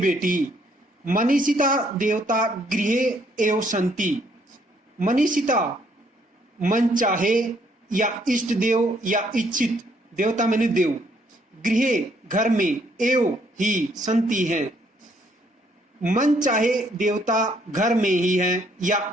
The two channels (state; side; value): normal; both; correlation 0.68